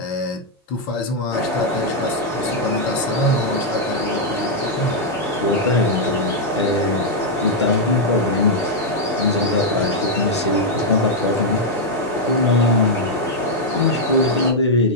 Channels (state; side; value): normal; both; correlation -0.03